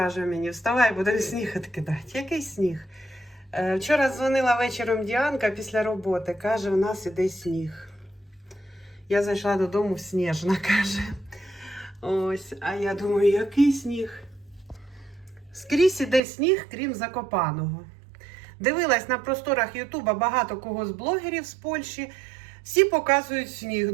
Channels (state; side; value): drops out; left; at 16.2 s